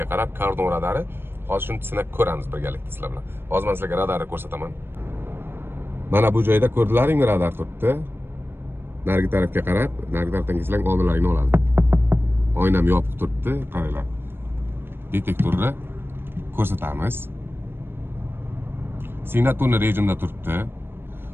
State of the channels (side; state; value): left; late; 0.10 ms